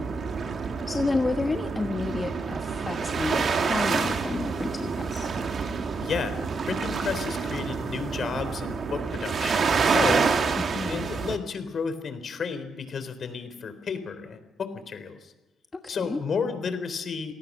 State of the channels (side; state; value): both; normal; correlation 0.80